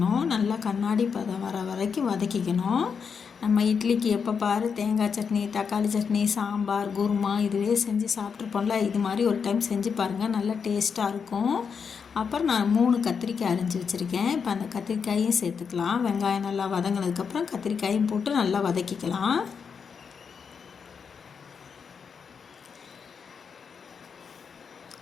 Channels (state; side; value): quieter; right; 6.2 dB